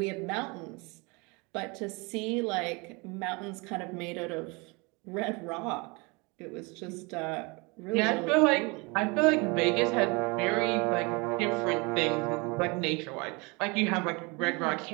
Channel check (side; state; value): left; quieter; 28.2 dB